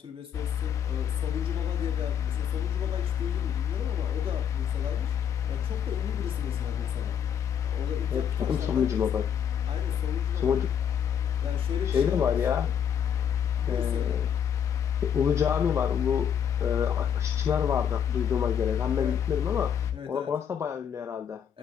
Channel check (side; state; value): right; quieter; 8.3 dB